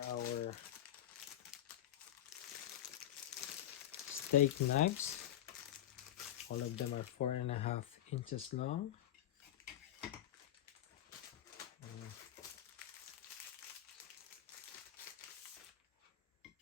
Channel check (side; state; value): right; quieter; 12.0 dB